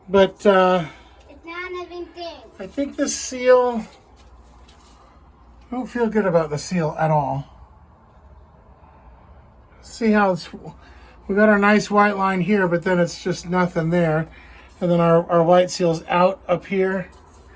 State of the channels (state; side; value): identical; both; correlation 1.00